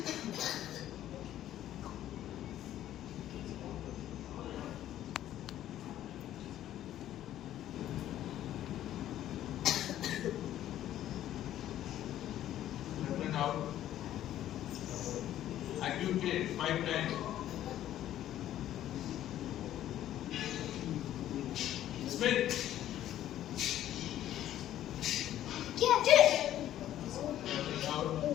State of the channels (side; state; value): right; quieter; 12.4 dB